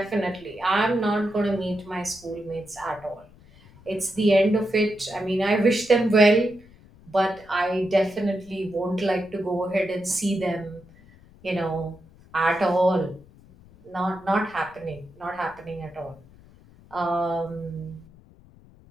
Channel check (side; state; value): left; noise; rumble, 25 dB below the sound